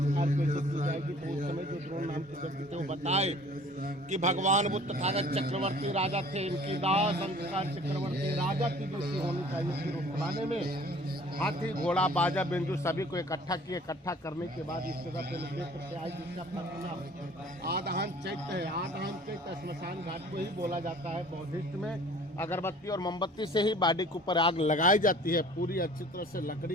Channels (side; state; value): both; normal; correlation 0.50